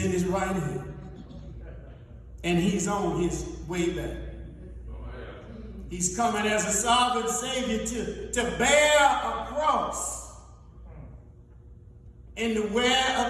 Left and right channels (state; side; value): identical; both; correlation 1.00